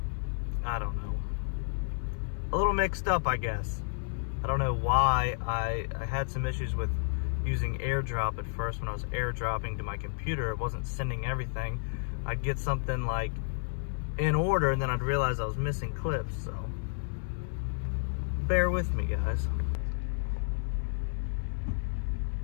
I don't know, a little mixed up, I guess. I don't know why. I had some issues with using AirDrop at first. When I was AirDropping to my computer, it wasn't sending everything. I'd get something like in order, and then I'd realize I was missing clips, so bear with me, guys.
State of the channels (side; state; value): right; silent; 57 dB below the other